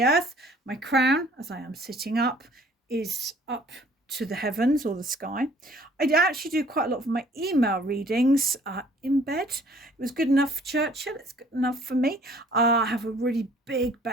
earth. My crown, as I am sitting up, is up to the heavens or the sky. I actually do quite a lot of my email readings in bed. It was good enough for Churchill. It's good enough for me. I have a really big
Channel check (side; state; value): both; normal; correlation 0.56